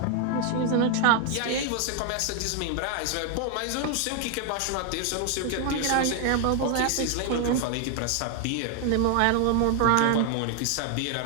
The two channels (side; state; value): both; different; correlation 0.00